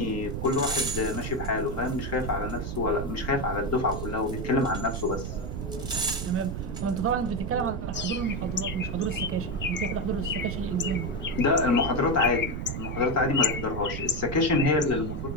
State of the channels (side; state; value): right; noise; rumble, 5 dB below the sound